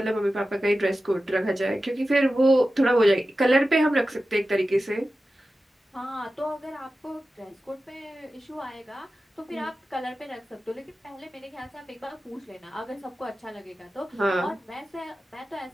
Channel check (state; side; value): normal; both; correlation 0.94